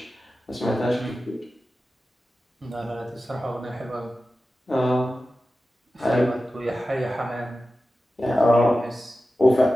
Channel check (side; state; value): both; normal; correlation 0.94